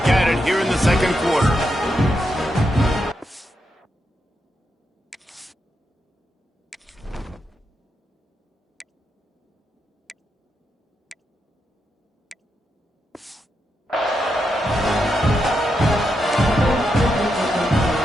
at it here in the 2nd quarter.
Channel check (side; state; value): both; normal; correlation 0.84